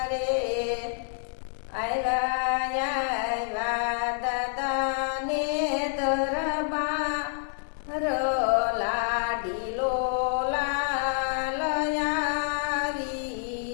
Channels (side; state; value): right; silent; digital silence